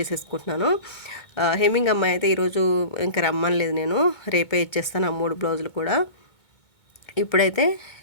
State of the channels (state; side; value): late; right; 2.2 ms